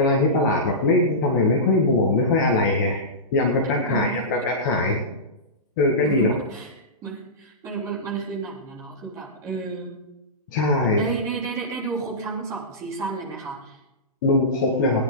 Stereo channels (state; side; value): normal; both; correlation -0.18